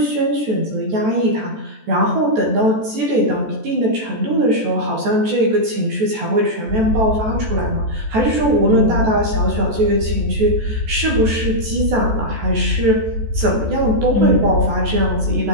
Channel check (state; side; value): late; left; 14 ms